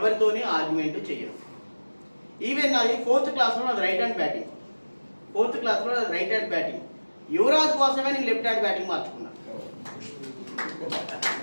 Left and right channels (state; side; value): inverted; both; correlation -1.00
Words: ఆర్గ్యుమెంట్ చేయను. ఈవెన్ నాది 4th క్లాస్లో నాది రైట్ హ్యాండ్ బ్యాటింగ్. యువరాజ్ కోసమే నేను లెఫ్ట్ హ్యాండ్ బ్యాటింగ్ మార్చుకున్నాను.